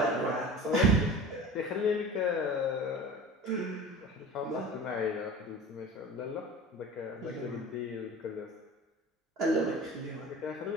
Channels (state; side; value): normal; both; correlation 0.37